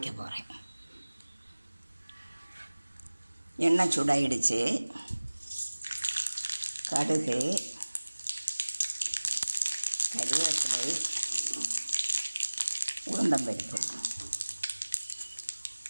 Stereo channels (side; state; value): both; inverted; correlation -1.00